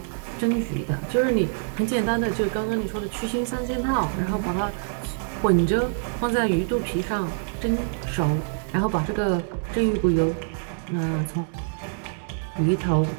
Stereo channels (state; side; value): silent; left; 62 dB below the other